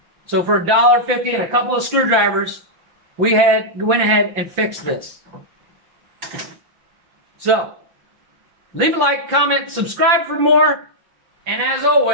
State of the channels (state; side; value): late; left; 5.7 ms